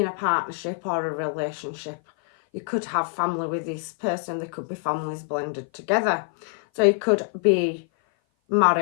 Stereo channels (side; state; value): right; silent; 56 dB below the other